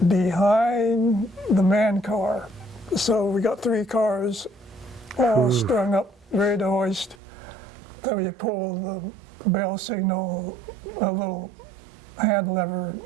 behind the man car. So we got 3 cars all strung up, ready to hoist. Then we pull the bell signal, a little hand lever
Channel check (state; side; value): drops out; left; at 7.2 s